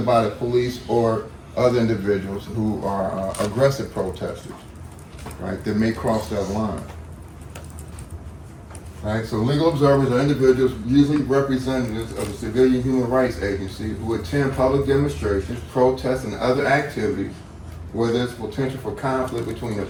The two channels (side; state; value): both; identical; correlation 1.00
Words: the police or other individuals who are aggressive protesters, right, that may cross that line. Right, so legal observers are individuals, usually representatives of a civilian human rights agency, who attend public demonstrations, protests, and other activities where there's potential for conflict between the